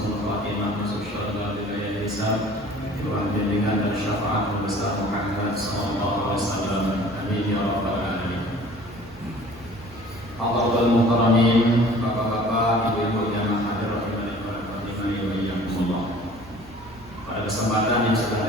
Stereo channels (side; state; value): right; noise; hum, 22 dB below the sound